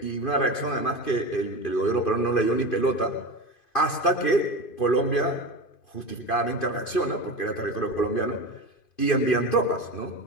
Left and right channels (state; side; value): late; right; 2.5 ms